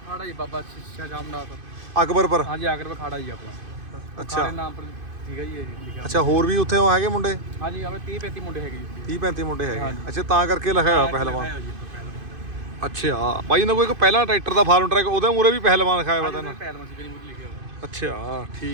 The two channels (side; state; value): left; late; 2.5 ms